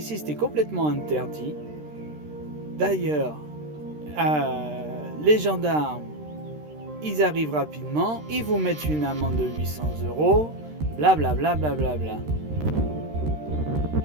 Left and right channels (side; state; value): left; late; 13 ms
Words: c'était complètement interdit. D'ailleurs, les gendarmes, ils arrivent rapidement, ils vous mettent une amende de 800 €, blablabla, blablabla.